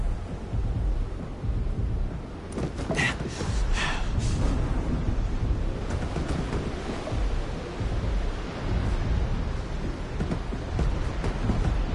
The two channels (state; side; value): identical; both; correlation 1.00